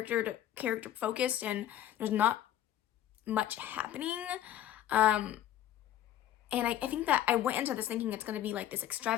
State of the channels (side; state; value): right; quieter; 11.8 dB